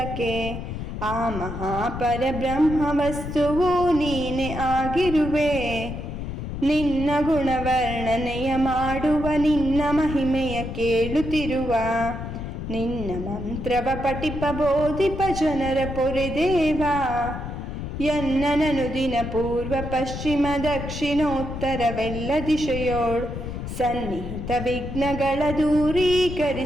ಆ ಮಹಾಪರಬ್ರಹ್ಮ ವಸ್ತುವು ನೀನೆ ಆಗಿರುವೆ. ನಿನ್ನ ಗುಣವರ್ಣನೆಯ ಮಾಡುವ ನಿನ್ನ ಮಹಿಮೆಯ ಕೇಳುತ್ತಿರುವ. ನಿನ್ನ ಮಂತ್ರವ ಪಠಿಪ ಬೋಧಿಪ ಜನರ ಪೊರೆದೇವ. ಎನ್ನನನು ದಿನ ಪೂರ್ವ ಪಶ್ಚಿಮ ದಕ್ಷಿಣೋತ್ತರವೆಲ್ಲ ದಿಶೆಯೋಳು ಸನ್ನಿಹಿತ ವಿಘ್ನಗಳ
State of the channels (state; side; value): noise; left; rumble, 6 dB below the sound